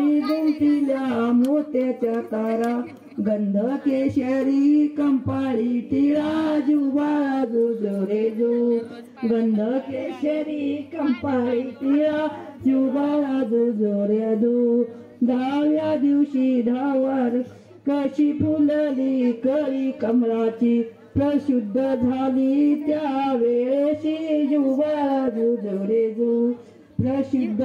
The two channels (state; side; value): identical; both; correlation 1.00